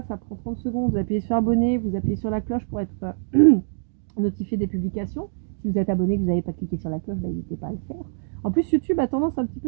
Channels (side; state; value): left; silent; digital silence